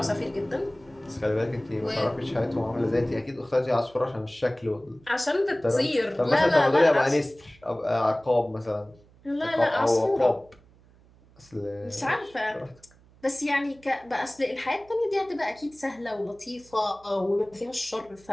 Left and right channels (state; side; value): noise; right; hum, 28 dB below the sound